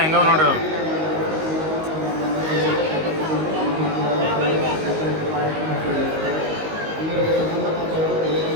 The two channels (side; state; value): left; late; 19 ms